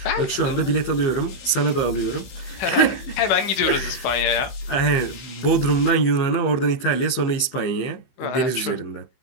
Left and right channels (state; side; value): late; right; 15 ms